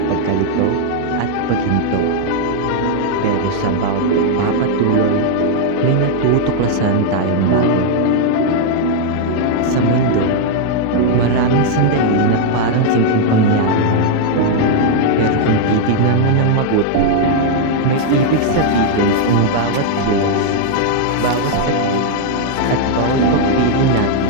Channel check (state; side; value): different; both; correlation 0.00